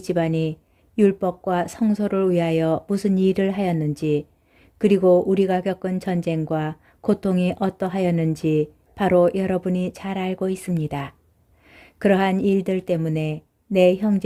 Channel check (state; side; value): identical; both; correlation 1.00